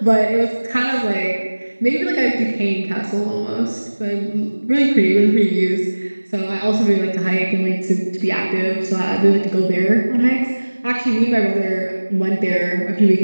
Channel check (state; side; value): inverted; both; correlation -1.00